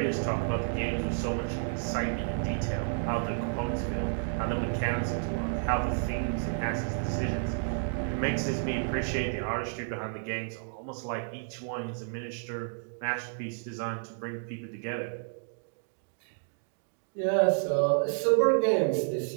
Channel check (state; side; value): silent; left; digital silence